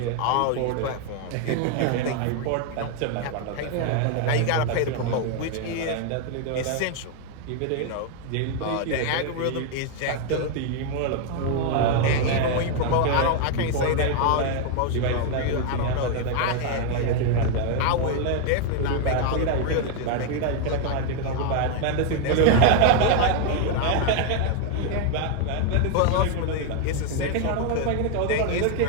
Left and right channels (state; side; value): different; both; correlation 0.00